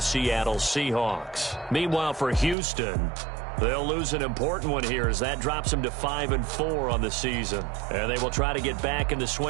Seattle Seahawks. Meanwhile, for Houston, they'll lose an important one here as that drops them to 5-4 on the season. And they will try to get back in the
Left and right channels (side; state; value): left; drops out; at 2.6 s